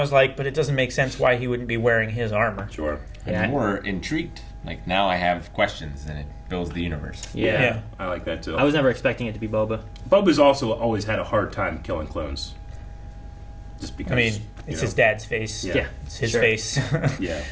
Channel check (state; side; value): identical; both; correlation 1.00